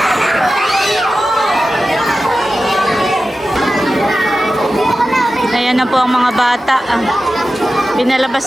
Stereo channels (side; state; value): both; normal; correlation 0.93